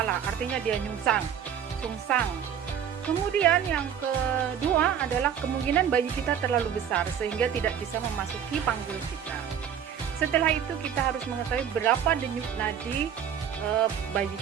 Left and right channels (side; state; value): left; quieter; 8.6 dB